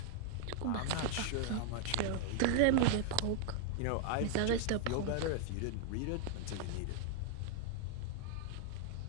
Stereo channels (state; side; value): different; both; correlation -0.01